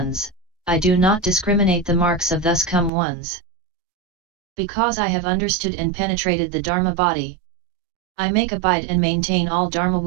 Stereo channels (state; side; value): drops out; left; at 2.9 s